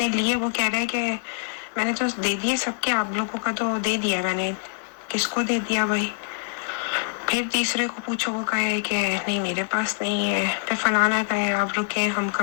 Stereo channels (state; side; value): silent; right; 62 dB below the other